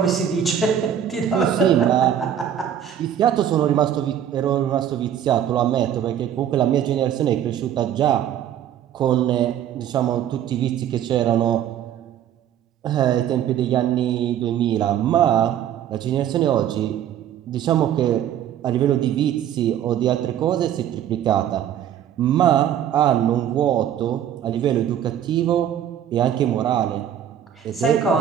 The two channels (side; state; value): left; quieter; 10.0 dB